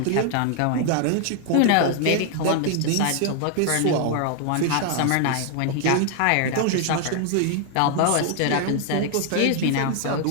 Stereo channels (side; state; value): both; different; correlation 0.00